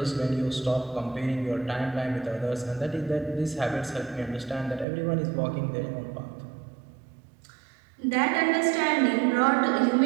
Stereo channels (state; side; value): drops out; left; at 4.9 s